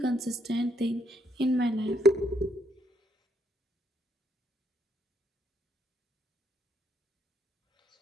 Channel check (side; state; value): both; normal; correlation 0.73